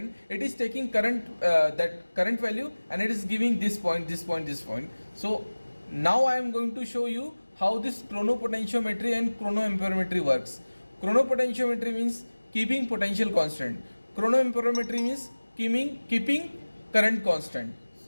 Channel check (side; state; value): both; inverted; correlation -1.00